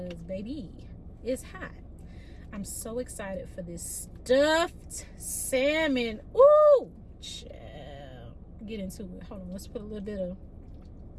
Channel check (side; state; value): both; identical; correlation 1.00